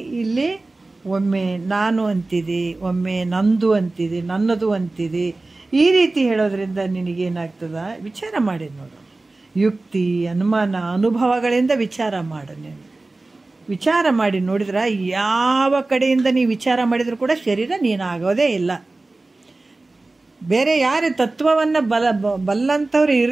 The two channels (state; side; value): quieter; left; 3.2 dB